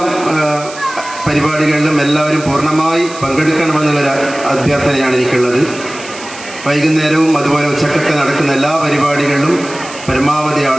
പരിപാടികളിലും എല്ലാവരും പൂർണ്ണമായി പങ്കെടുക്കണമെന്നുള്ളൊരു അഭ്യർത്ഥനയാണ് എനിക്കുള്ളത്. വൈകുന്നേരവും അതുപോലെ ഉച്ചക്കൊക്കെ നടക്കുന്ന എല്ലാ പരിപാടികളിലും പരമാവധി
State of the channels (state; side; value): noise; right; hiss, 15 dB below the sound